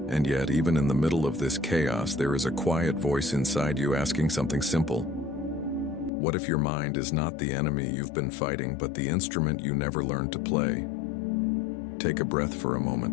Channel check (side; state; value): right; drops out; at 6.1 s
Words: yet, even in the middle of this chaos, there is a quiet voice inside you asking something simple. What if your mind is not the enemy you've been fighting, but the instrument you never learned to play? Take a breath for a